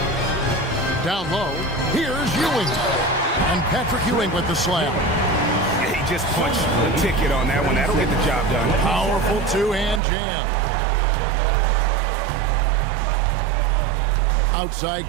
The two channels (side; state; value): left; drops out; at 10.0 s